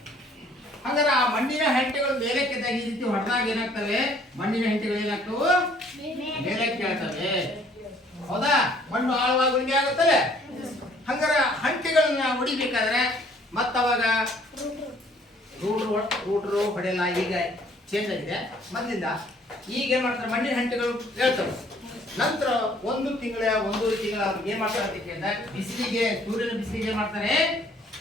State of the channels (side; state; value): both; normal; correlation 0.60